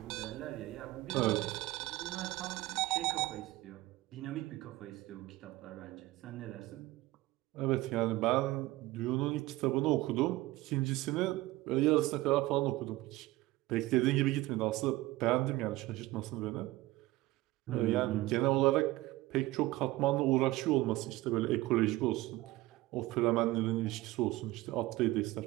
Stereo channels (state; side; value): quieter; left; 18.5 dB